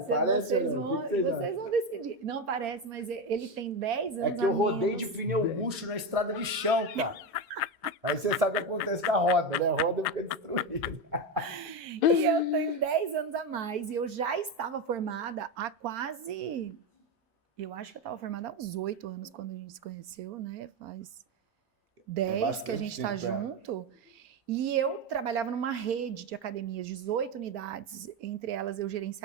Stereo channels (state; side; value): late; left; 1.1 ms